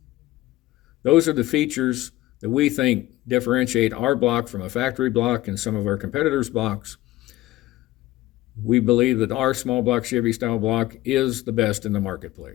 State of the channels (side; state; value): right; quieter; 16.9 dB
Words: Those are the features that we think differentiate our block from a factory block and some of our competitors' blocks. We believe that our small block Chevy style block is the best in the